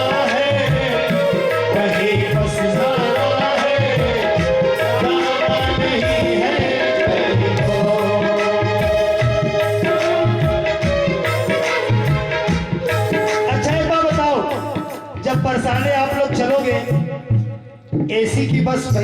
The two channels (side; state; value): both; identical; correlation 1.00